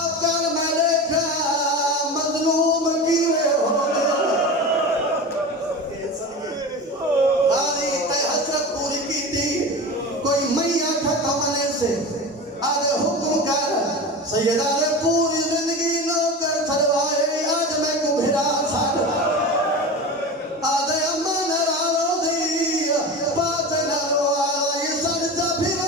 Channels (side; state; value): both; normal; correlation 0.28